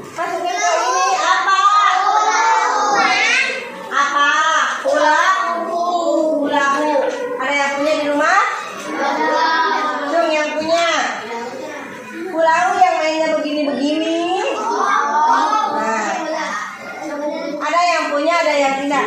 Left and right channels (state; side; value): identical; both; correlation 1.00